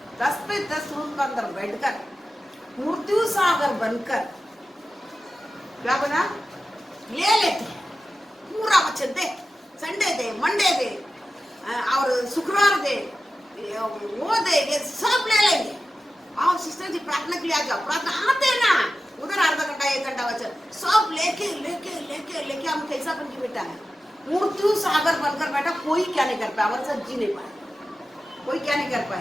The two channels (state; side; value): normal; both; correlation 0.94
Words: 10 पे 10 रूम के अंदर बैठकर मृत्यु सागर बनकर क्या बना ले लेते हैं। पूरा वचन दे, संडे दे, मंडे दे और शुक्रवार दे, वो दे, ये सब ले लेंगे। आओ सिस्टर जी प्रार्थना के लिए आ जाओ, प्रार्थना आते ना, उधर आधा घंटा 1 घंटा वचन सब लेके लेके लेके लेके हम कैसा बन के बैठा है, मृत्यु सागर बनकर बैठा। कोई क्या नहीं कर पाया, हमारे साथ जी नहीं पाया, कोई क्या नहीं कर